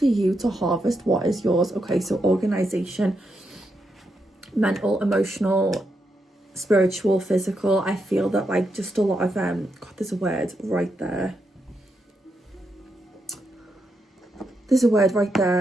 you to harvest what is yours. Okay, so organization, mental, emotional, spiritual, physical. I feel that like just a lot of God, there's a word right there. There's a word right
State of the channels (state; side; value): normal; both; correlation 0.82